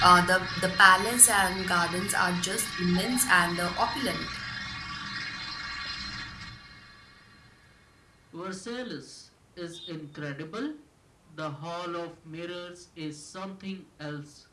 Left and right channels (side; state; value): both; identical; correlation 1.00